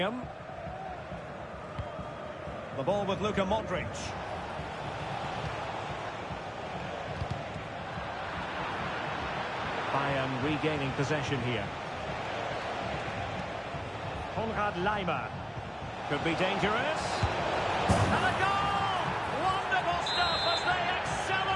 The ball with Luka Modric. Bayern regaining possession here. Konrad Laimer. Could be dangerous. And a goal! Wonderful stuff as they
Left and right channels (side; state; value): both; identical; correlation 1.00